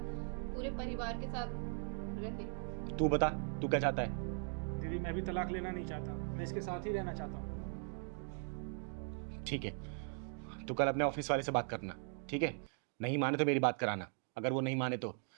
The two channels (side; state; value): left; silent; 52 dB below the other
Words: पूरे परिवार के साथ रहे। तू बता, तू क्या चाहता है? दीदी मैं भी तलाक लेना नहीं चाहता, मैं इसके साथ ही रहना चाहता हूँ। ठीक है, तू कल अपने ऑफिस वाले से बात करना, ठीक है? नहीं माने तो मेरी बात कराना, अगर वो नहीं माने तो